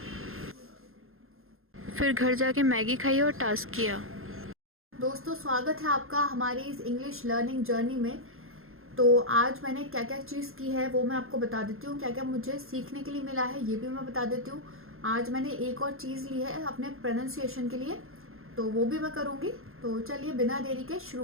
फिर घर जाके मैगी खाई और टास्क किया। दोस्तों स्वागत है आपका हमारी इस इंग्लिश लर्निंग जर्नी में। तो आज मैंने क्या क्या चीज़ की है वो मैं आपको बता देती हूँ। क्या क्या मुझे सीखने के लिए मिला है ये भी मैं बता देती हूँ। आज मैंने एक और चीज़ ली है अपने प्रोनाउंसिएशन के लिए, तो वो भी मैं करूँगी। तो चलिए बिना देरी के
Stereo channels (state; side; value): late; left; 0.61 ms